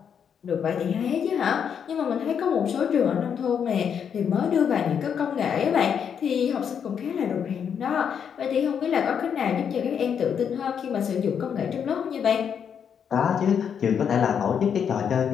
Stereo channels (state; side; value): quieter; right; 7.7 dB